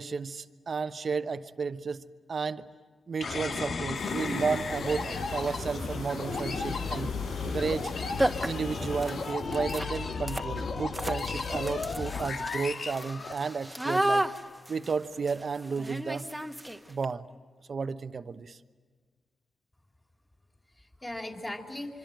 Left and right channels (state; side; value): normal; both; correlation 0.88